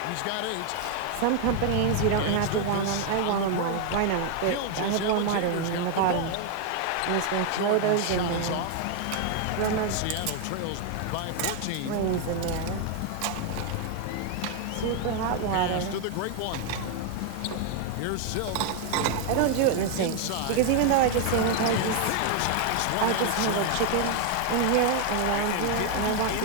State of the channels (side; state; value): both; different; correlation 0.00